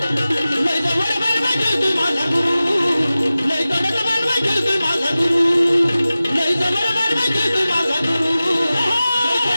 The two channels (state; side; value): inverted; both; correlation -0.96